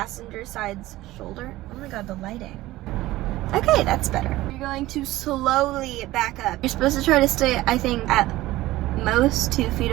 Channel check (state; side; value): quieter; left; 17.1 dB